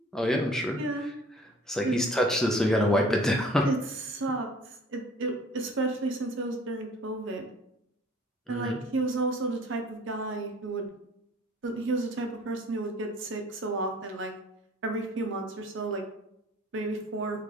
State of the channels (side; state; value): both; normal; correlation 0.51